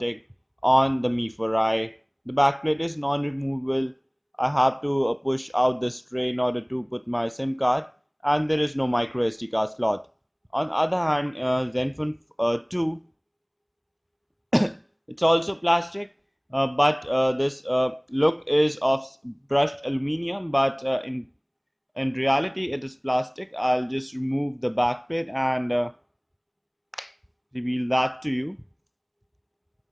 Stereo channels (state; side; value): identical; both; correlation 1.00